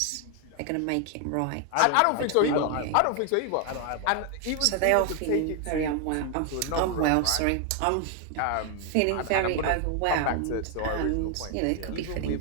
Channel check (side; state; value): both; different; correlation 0.00